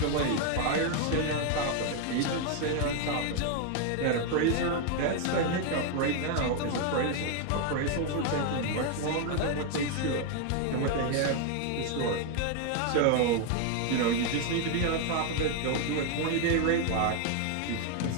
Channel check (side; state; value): both; different; correlation 0.00